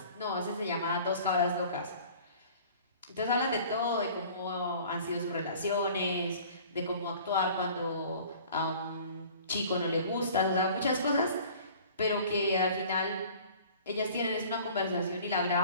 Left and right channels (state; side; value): inverted; both; correlation -0.47